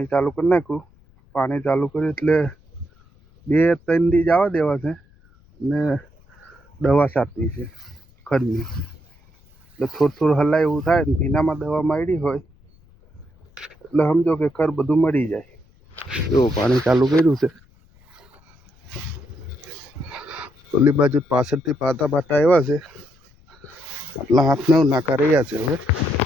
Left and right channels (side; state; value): left; noise; rumble, 29 dB below the sound